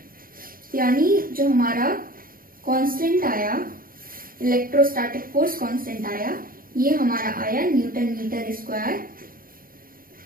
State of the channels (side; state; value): left; late; 0.41 ms